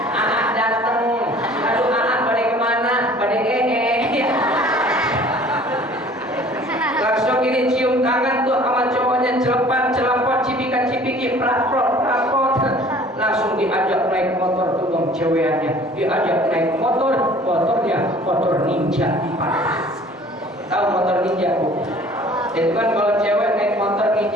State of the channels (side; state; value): both; normal; correlation 0.50